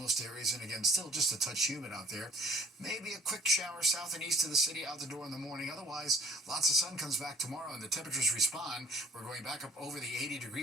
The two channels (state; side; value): normal; both; correlation 0.55